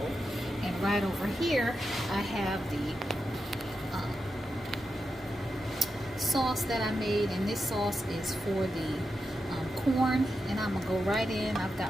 And right over here I have the sauce that I made, and this sauce is for the corn, and I'm gonna go right in. I've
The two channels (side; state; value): both; normal; correlation 0.88